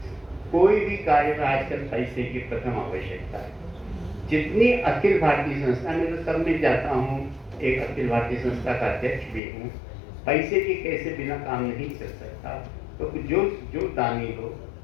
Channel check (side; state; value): right; drops out; at 9.4 s